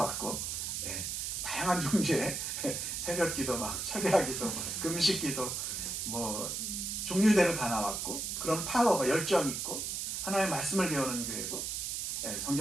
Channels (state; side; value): noise; right; hiss, 3 dB below the sound